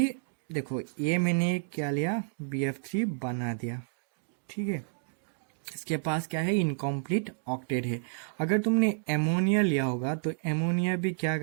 देखो ये मैंने क्या लिया, BF3 बना दिया, ठीक है। इसके पास क्या है, इनकम्प्लीट ऑक्टेट है। अगर तुमने एमोनिया लिया होगा तो एमोनिया भी क्या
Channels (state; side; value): silent; left; digital silence